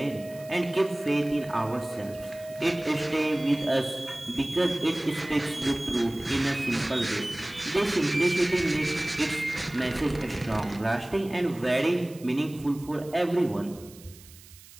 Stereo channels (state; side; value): noise; right; hiss, 21 dB below the sound